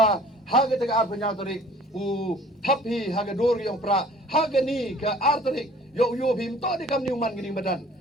ha ke ar penya tarik u thapi ha ke dor yang pra ha ke ni ke ar tarik yo bim to di kam ni man gini badan.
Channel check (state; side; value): normal; both; correlation 0.51